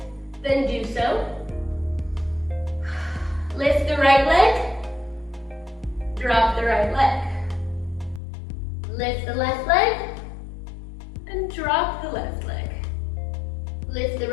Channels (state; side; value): drops out; right; at 8.2 s